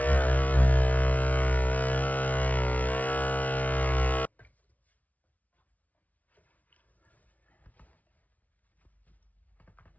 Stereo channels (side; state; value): right; late; 0.071 ms